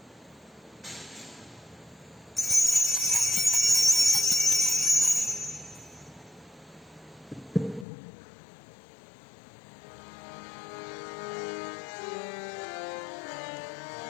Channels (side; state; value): right; drops out; at 7.9 s